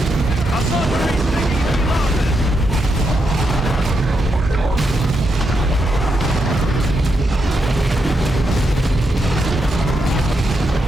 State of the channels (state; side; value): normal; both; correlation 0.82